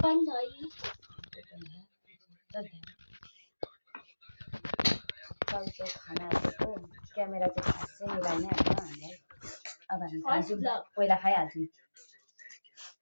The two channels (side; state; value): both; inverted; correlation -1.00